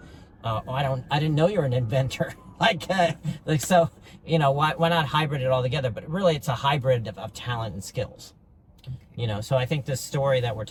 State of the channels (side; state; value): both; identical; correlation 1.00